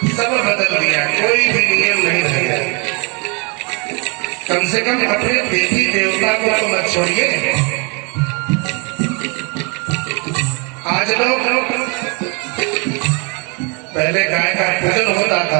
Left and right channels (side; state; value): left; quieter; 32.4 dB